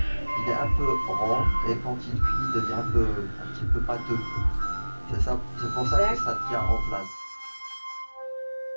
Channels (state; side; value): inverted; both; correlation -1.00